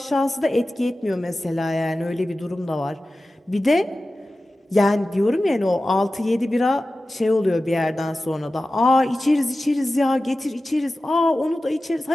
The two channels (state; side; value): normal; both; correlation 0.95